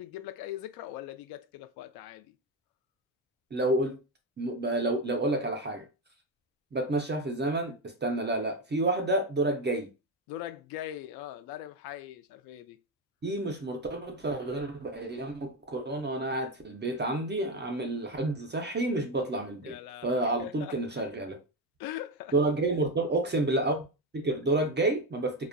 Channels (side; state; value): both; normal; correlation 0.13